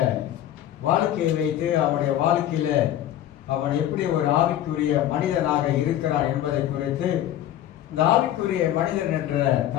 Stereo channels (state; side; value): quieter; right; 12.1 dB